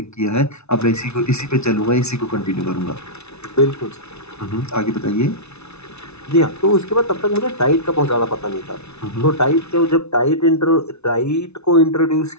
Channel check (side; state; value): right; late; 0.81 ms